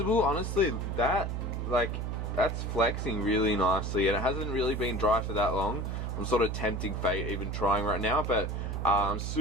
honestly, that's flexing really nicely, and it hasn't really been dry for that long. I'm sort of tempting fate even trying right now, but I'm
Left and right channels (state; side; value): noise; right; hum, 3 dB below the sound